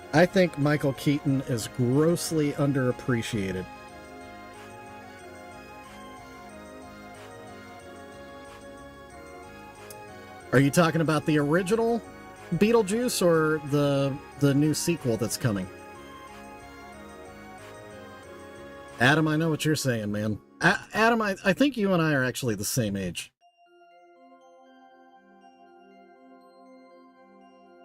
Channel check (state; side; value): identical; both; correlation 1.00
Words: I think Michael Keaton is grossly underappreciated. Are you talking about the original Beetlejuice or the new sequel that's coming? Adam, I know what you're saying, man. Adam, I think you and I are actually the same age.